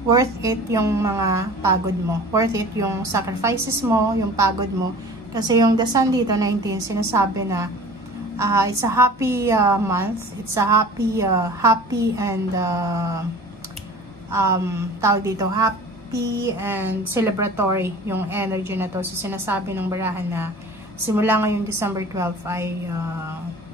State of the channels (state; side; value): normal; both; correlation 0.42